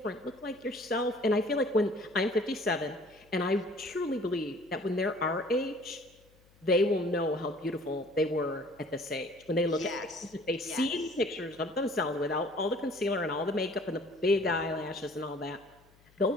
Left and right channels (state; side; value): noise; left; hum, 30 dB below the sound